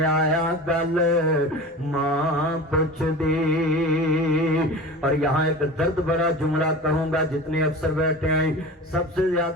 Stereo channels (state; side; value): normal; both; correlation 0.34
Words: آیا گل ماں پوچھ دی اور یہاں ایک درد بھرا جملہ کہوں گا جتنے افسر بیٹھے ہیں سب سے